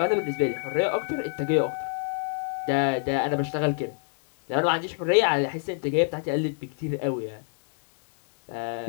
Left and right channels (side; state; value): right; silent; digital silence